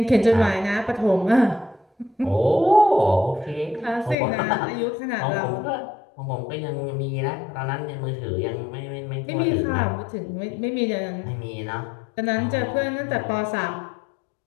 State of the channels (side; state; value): right; drops out; at 4.2 s